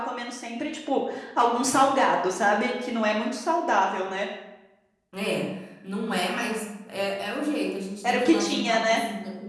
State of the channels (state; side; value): identical; both; correlation 1.00